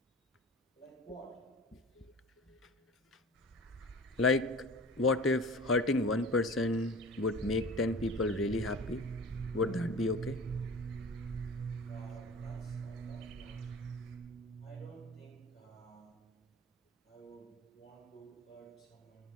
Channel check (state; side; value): normal; both; correlation 0.39